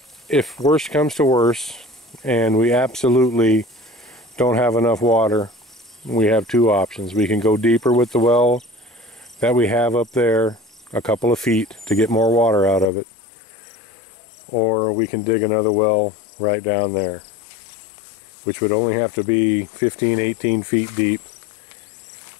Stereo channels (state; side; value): drops out; right; at 12.9 s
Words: if worse comes to worse and we absolutely don't have enough water, we have two options. We can go deeper with the well that we have up there, a couple of feet, to get more water out of it, or we can dig another well right down there, which would only have to be 15-18 feet deep